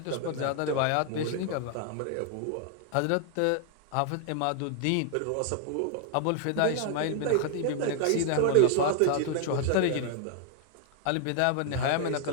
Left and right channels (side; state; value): both; different; correlation 0.00